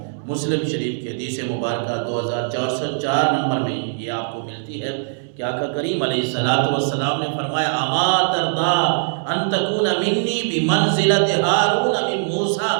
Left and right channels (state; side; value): silent; left; 65 dB below the other